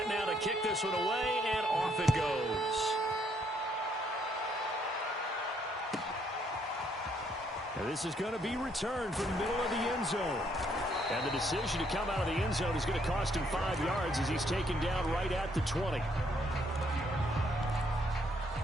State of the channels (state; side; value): normal; both; correlation 0.70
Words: now to kick this one away, and off it goes. And this is going to be returned from the middle of the end zone. And the decision to come out of the end zone is going to cost him 5 yards as he's taken down right at the 20.